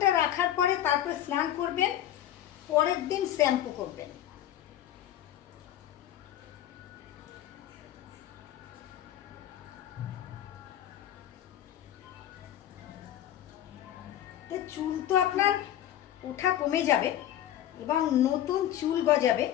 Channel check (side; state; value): right; quieter; 11.9 dB